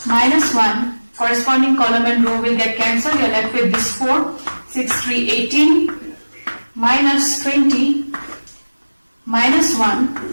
minus 1, corresponding column and row will get cancelled. You are left with this 4, 6, 3, 18 minus 20 minus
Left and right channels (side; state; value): both; inverted; correlation -1.00